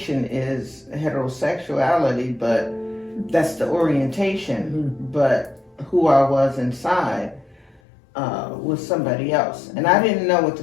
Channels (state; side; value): drops out; right; at 7.8 s